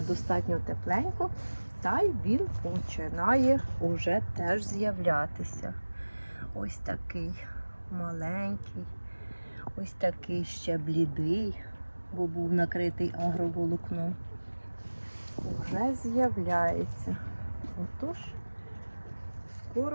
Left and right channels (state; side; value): inverted; both; correlation -1.00